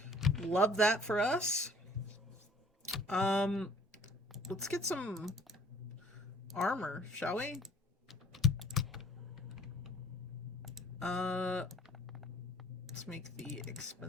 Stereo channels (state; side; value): normal; both; correlation 0.54